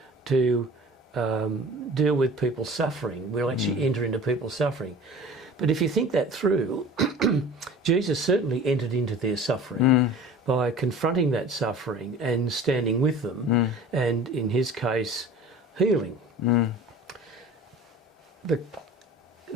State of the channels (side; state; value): both; normal; correlation 0.42